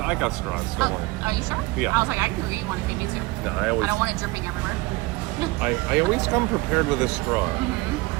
got straws, don't worry. Are you sure? Yeah. I was like, I can eat one if you need to. No, I don't want it dripping everywhere. I always come prepared with a straw.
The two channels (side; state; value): left; quieter; 22.0 dB